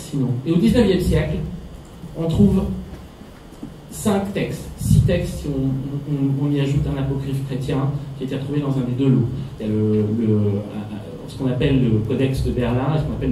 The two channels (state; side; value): identical; both; correlation 1.00